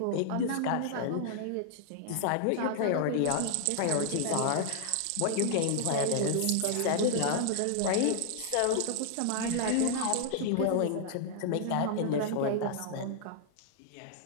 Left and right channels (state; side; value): different; both; correlation -0.01